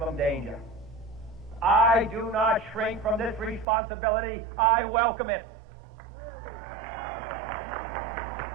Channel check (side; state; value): left; drops out; at 3.7 s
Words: danger. I do not shrink from this responsibility. I welcome it.